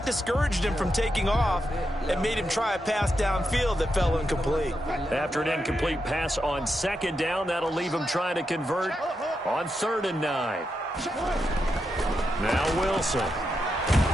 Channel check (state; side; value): normal; both; correlation 0.85